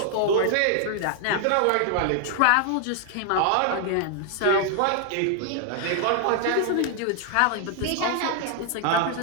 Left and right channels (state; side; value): different; both; correlation 0.00